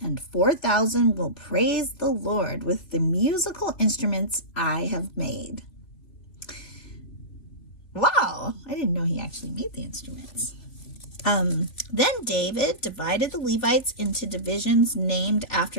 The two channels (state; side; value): late; right; 2.9 ms